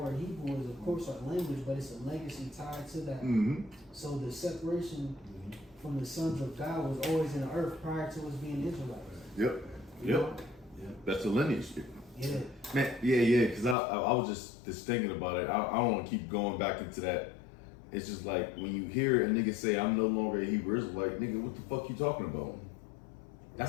Hebrew is, of course, our language, but it's a legacy tied to that. So the separation from the sons of God was always in the earth prior to us being Israelites. Yep. That's the lineage. Yeah. Man, because I was just thinking about it. I don't want to keep going back into that. It's just like when you hear a nigga say, I'm no longer a Hebrew Israelite, nigga, what the fuck you talking about?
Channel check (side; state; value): right; drops out; at 13.8 s